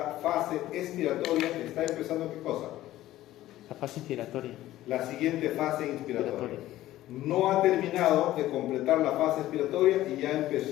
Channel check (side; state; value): right; quieter; 14.9 dB